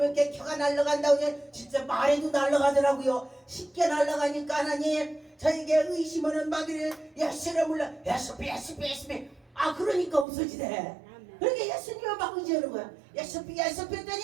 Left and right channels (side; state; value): left; drops out; at 10.2 s